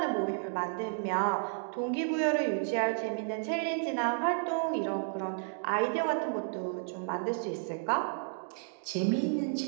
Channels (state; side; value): silent; left; digital silence